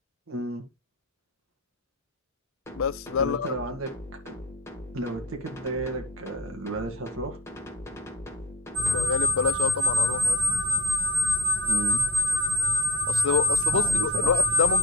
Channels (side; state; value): both; normal; correlation 0.44